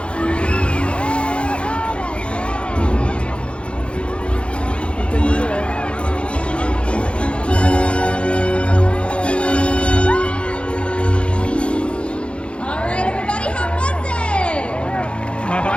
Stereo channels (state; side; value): late; right; 0.058 ms